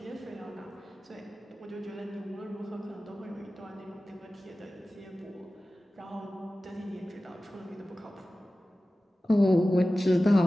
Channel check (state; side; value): normal; both; correlation 0.96